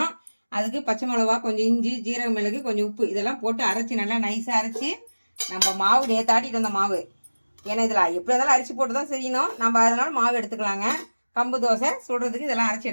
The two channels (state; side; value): inverted; both; correlation -1.00